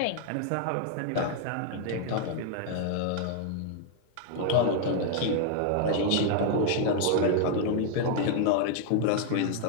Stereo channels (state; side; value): different; both; correlation 0.00